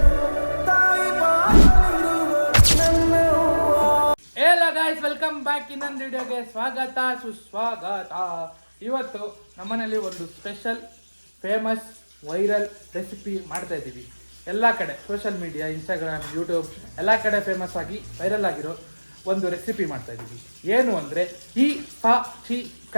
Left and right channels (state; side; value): inverted; both; correlation -1.00